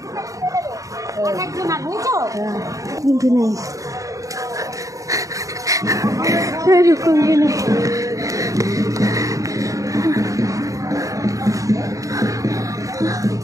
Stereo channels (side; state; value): left; late; 0.16 ms